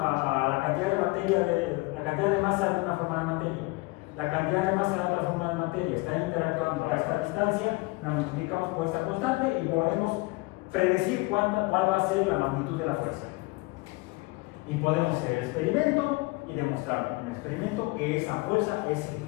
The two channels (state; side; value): quieter; right; 24.6 dB